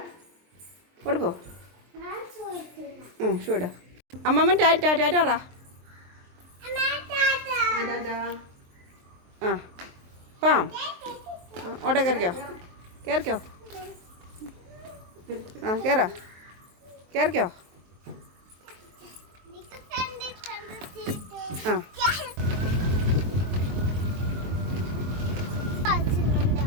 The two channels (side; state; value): left; late; 23 ms